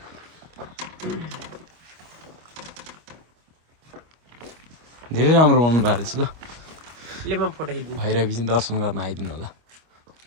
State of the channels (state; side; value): late; left; 25 ms